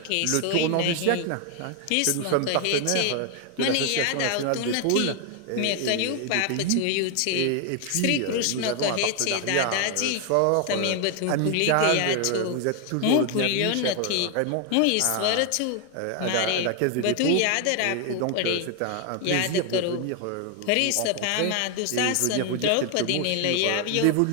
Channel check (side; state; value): both; different; correlation 0.01